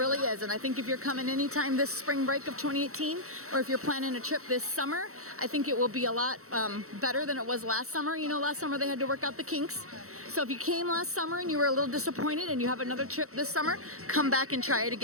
is, and I think if you're coming anytime this spring break of 2018, or if you're planning a trip this summer, I think it will be a lot better than it was last summer. You know, last summer they had to work out the kinks. So if you came last summer and you were a little disappointed and you have another trip this summer, come back and try it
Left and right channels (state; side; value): late; left; 0.64 ms